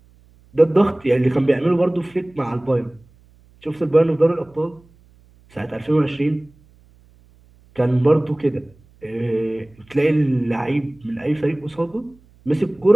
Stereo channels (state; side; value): noise; right; hum, 29 dB below the sound